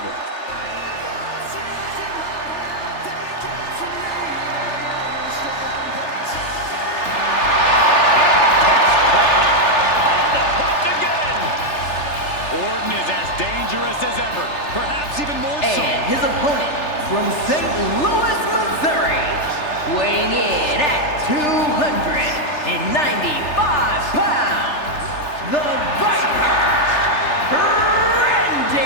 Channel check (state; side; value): late; right; 3.3 ms